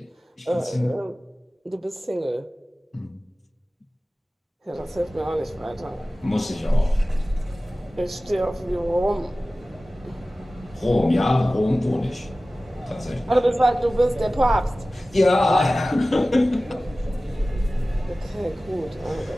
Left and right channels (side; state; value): both; normal; correlation 0.96